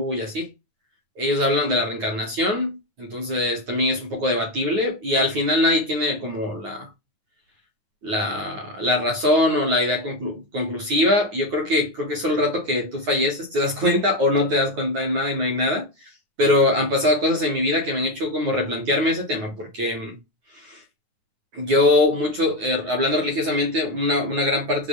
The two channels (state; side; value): late; left; 9.5 ms